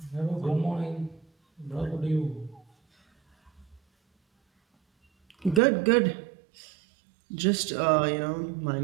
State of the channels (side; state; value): left; drops out; at 5.6 s